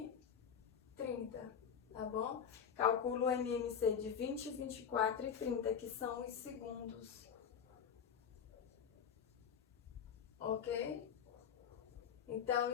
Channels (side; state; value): right; quieter; 7.6 dB